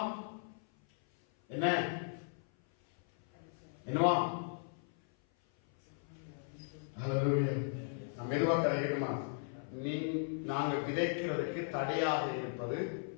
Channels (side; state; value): right; silent; 53 dB below the other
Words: நம்ம எதுவாக கிடைக்கணுமா? நாங்கள் விதைக்கிறதுக்கு தடையாக இருப்பது